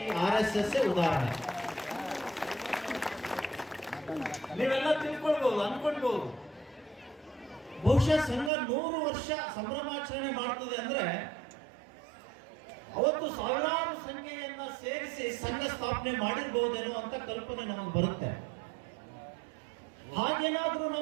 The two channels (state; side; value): drops out; left; at 8.5 s